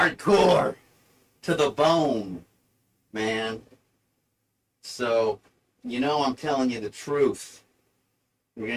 to the bone, man. So, I'm telling you the truth. We're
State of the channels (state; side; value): identical; both; correlation 1.00